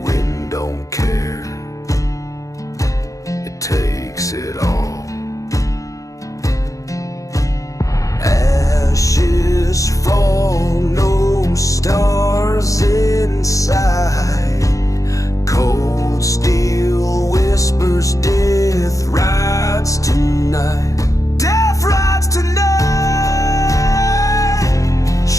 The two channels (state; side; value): late; right; 0.16 ms